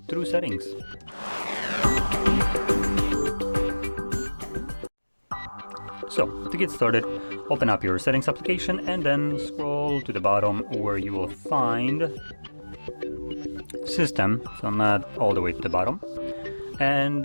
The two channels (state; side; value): inverted; both; correlation -1.00